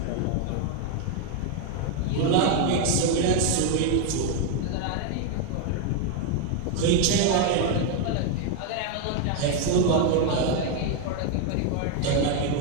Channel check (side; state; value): both; different; correlation 0.01